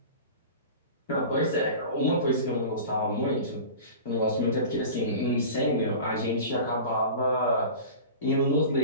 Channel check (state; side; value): inverted; both; correlation -0.35